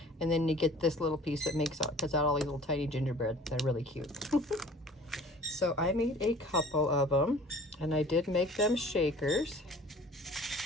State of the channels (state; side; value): normal; both; correlation 0.48